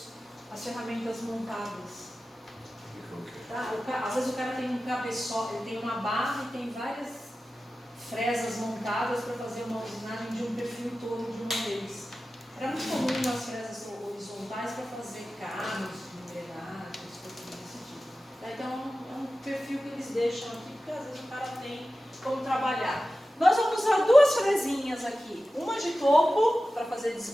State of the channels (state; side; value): normal; both; correlation 0.94